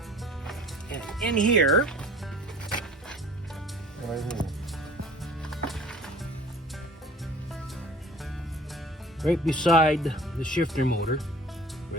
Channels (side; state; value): both; normal; correlation 0.46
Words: And in here, right beside the shifter motor, where